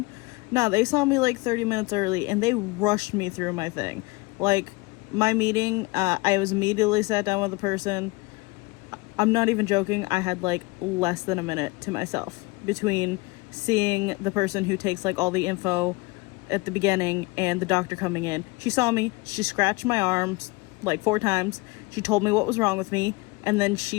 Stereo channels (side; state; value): right; quieter; 24.3 dB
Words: No, they saw me like 30 minutes early and they rushed me through my thing. Like my meeting, I was immediately sat down with the person. I'm not even joking. I had like less than a minute to myself between seeing the person who takes like all the info at the beginning and the doctor coming in. She saw me, she scratched my arms like 4 times. She told me what was wrong with me, and then